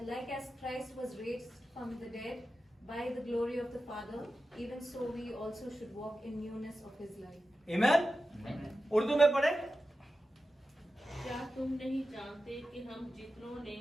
like as Christ was raised from the dead by the glory of the Father, even so we also should walk in newness of His life. Amen? Urdu में पढ़े? क्या तुम नहीं जानते कि हम जितनों ने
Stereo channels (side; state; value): both; normal; correlation 0.92